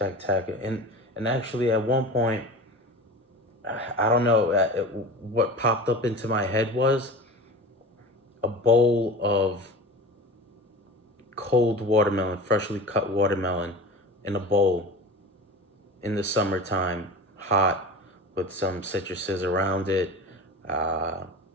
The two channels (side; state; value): both; normal; correlation 0.33